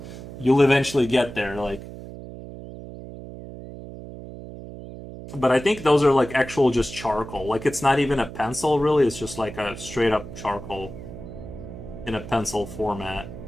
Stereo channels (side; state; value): right; noise; hum, 13 dB below the sound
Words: You'll eventually get there. Like, but I think those are like actual just charcoal. Like it's not even a pencil really. It's just like a straight up charcoal in a pencil format.